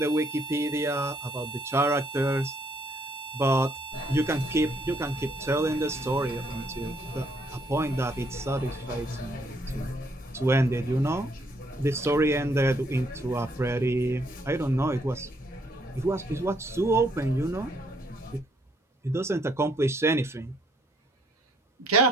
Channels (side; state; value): both; normal; correlation 0.69